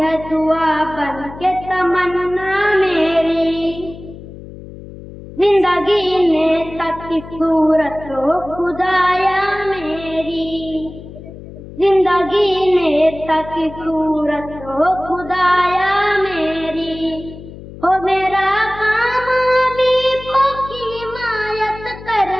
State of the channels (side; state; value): left; noise; hum, 15 dB below the sound